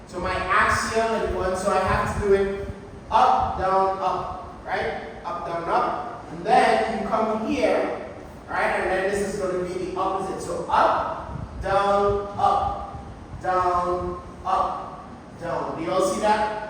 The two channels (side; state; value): both; identical; correlation 1.00